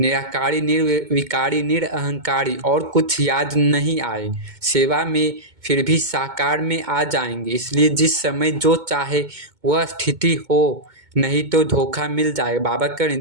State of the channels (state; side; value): late; left; 2.2 ms